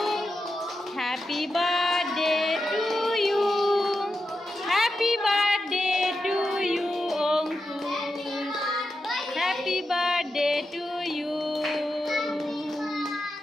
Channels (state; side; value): normal; both; correlation 0.88